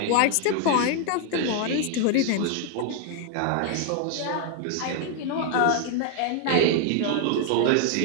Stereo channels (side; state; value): both; different; correlation 0.00